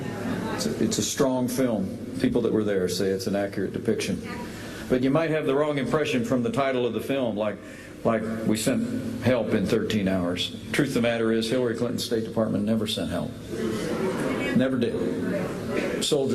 strong film. People that were there say it's an accurate depiction. But you might have the wrong impression from the title of the film, like we sent help in 13 hours. Truth of the matter is, Hillary Clinton's State Department never sent help. Never did.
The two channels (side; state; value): both; identical; correlation 1.00